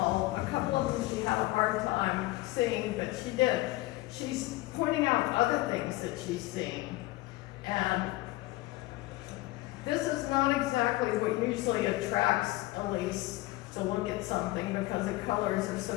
A couple of them she had a hard time seeing, but she did. She's pointing out other things that she's seeing. And this is not exactly what usually attracts Elise to look at something, because the colors are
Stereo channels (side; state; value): right; quieter; 19.3 dB